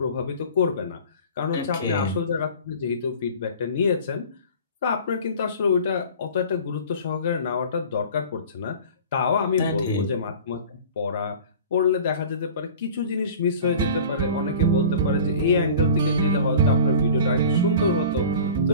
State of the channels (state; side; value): inverted; both; correlation -0.41